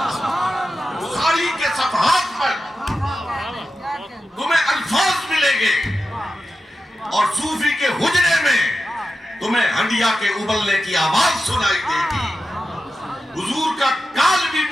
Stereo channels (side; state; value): both; normal; correlation 0.91